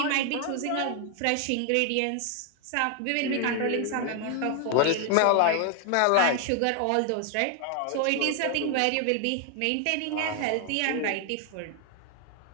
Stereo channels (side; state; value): both; different; correlation 0.01